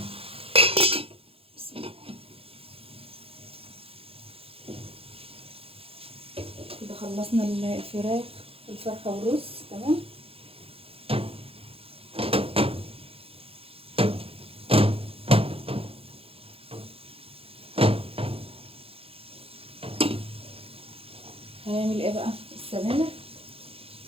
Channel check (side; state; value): left; late; 0.27 ms